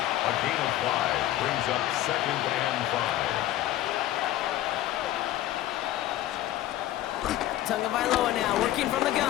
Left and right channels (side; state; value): right; quieter; 14.2 dB